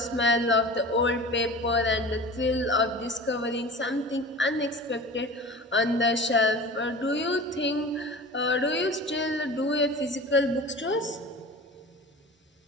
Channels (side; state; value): both; normal; correlation 0.37